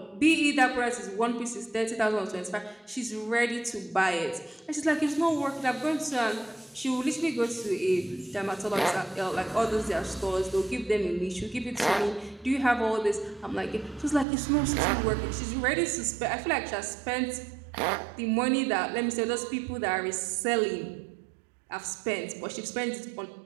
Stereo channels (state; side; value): drops out; left; at 14.2 s